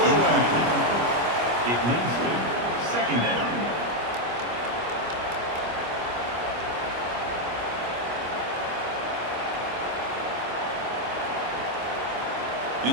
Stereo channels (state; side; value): late; left; 25 ms